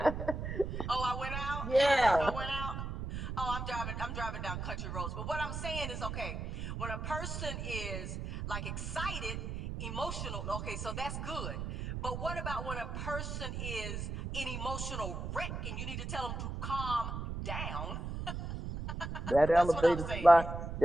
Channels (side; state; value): right; noise; rumble, 5 dB below the sound